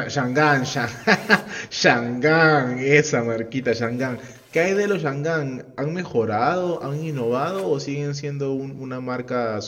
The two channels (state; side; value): identical; both; correlation 1.00